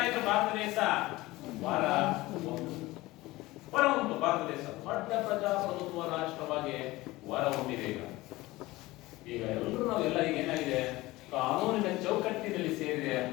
ಭಾರತ ದೇಶ ಹೊರಹೊಮ್ಮಿತು. ಭಾರತ ದೇಶ ದೊಡ್ಡ ಪ್ರಜಾಪ್ರಭುತ್ವ ರಾಷ್ಟ್ರವಾಗಿ ಹೊರಹೊಮ್ಮಿದೆ. ಈಗ ಎಲ್ಲರೂ ನಾವೆಲ್ಲ ಈಗ ಏನಾಗಿದೆ? ಕಾನೂನಿನ ಚೌಕಟ್ಟಿನಲ್ಲಿ ಸೇರಿದೆ.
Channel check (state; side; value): quieter; right; 19.3 dB